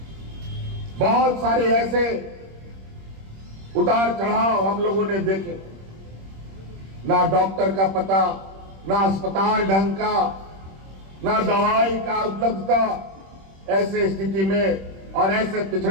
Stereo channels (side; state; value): left; late; 26 ms